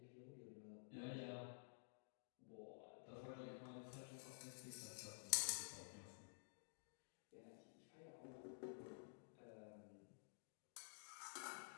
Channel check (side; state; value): right; silent; digital silence